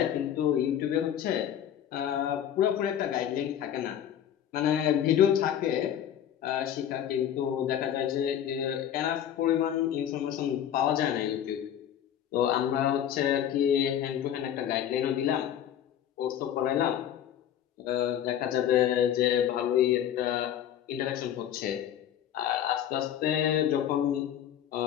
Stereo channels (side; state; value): right; quieter; 10.2 dB